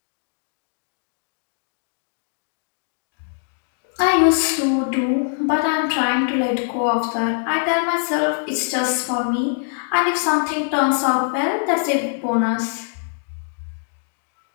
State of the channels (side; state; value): right; silent; digital silence